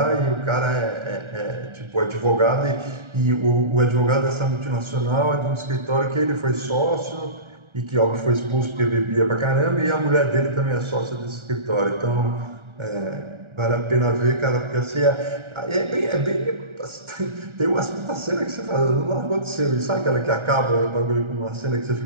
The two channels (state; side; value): late; left; 1.4 ms